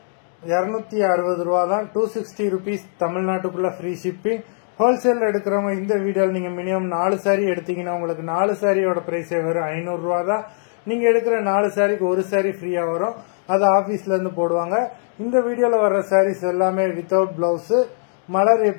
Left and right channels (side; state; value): right; silent; digital silence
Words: 260 ரூபா தான். 260 rupees தமிழ்நாட்டுக்குள்ள ஃப்ரீ ஷிப்பிங். ஹோல்சேல் எடுக்கிறவங்க இந்த வீடியோவில் நீங்கள் மினிமம் 4 சாரி எடுத்தீங்கன்னா உங்களுக்கு 4 சாரியோட ப்ரைஸே வெறும் 500 ரூபா தான். நீங்கள் எடுக்கிற 4 சாரிக்கு ஒரு சாரி ஃப்ரீயாக வரும். அது ஆஃபீஸ்லேருந்து போடுவாங்க. இந்த வீடியோவில் வர்ற சாரீஸ் எல்லாமே வித்தவுட் பிளவுஸு. மலர்